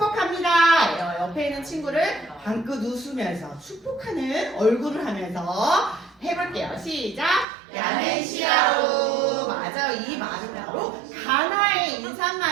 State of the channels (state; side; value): drops out; left; at 7.5 s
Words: 옆에 있는 친구를 방긋 웃으면서 축복하는 얼굴을 하면서 해볼게요. 시작! 야멘시아로. 맞아요. 이 말은 바로 가나의